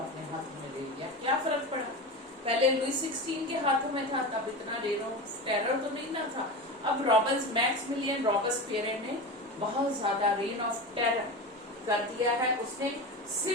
हाथ में ले लिया। क्या फर्क पड़ा, पहले लुई 16 के हाथों में था, तब इतना रेन ऑफ टेरर तो नहीं ना था। अब मैक्सिमिलियन रॉबस्पियर ने बहुत ज्यादा रेन ऑफ टेरर कर दिया है, उसने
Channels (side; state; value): both; normal; correlation 0.25